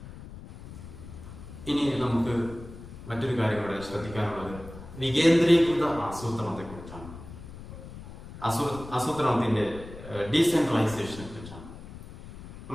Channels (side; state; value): left; noise; rumble, 14 dB below the sound